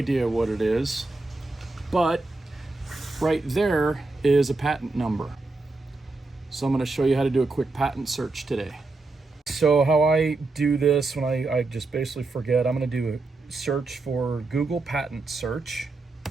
what it is, but right there is a patent number. So I'm going to show you how to do a quick patent search today. So how I do this when I just basically forget, I'm going to do a search for Google patent search.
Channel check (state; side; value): quieter; left; 3.4 dB